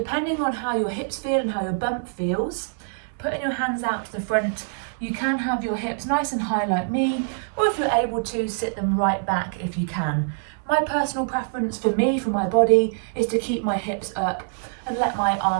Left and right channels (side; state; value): left; silent; 62 dB below the other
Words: on how your hips feel and how your bump feels, putting your hands out to the front, you can have your hips nice and high like me, or if you're able to, sit them right back if you can. My personal preference for me, for my body, is to keep my hips up and let my